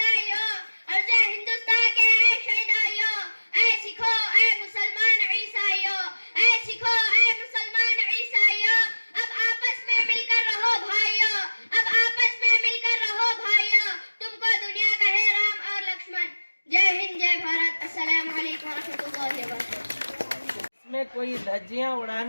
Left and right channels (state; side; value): inverted; both; correlation -1.00